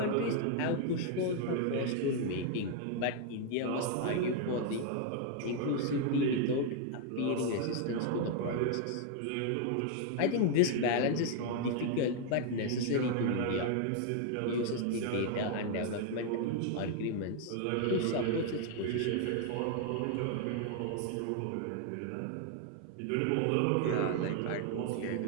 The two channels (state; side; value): different; both; correlation 0.00